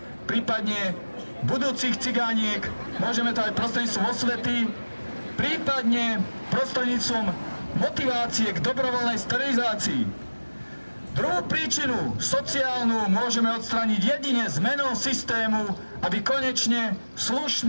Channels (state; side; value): inverted; both; correlation -1.00